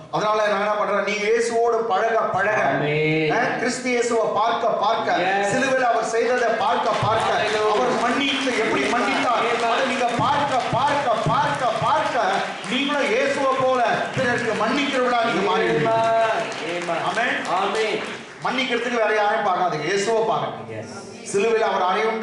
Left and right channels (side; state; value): both; identical; correlation 1.00